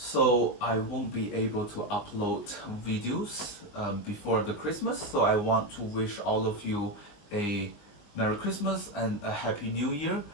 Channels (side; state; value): right; late; 20 ms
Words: I won't be able to upload videos before the Christmas. So I want to wish all of you a Merry Christmas and a Happy New Year.